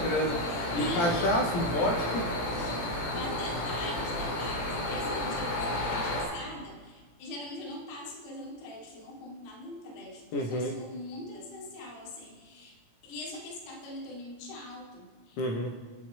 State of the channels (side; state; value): right; late; 17 ms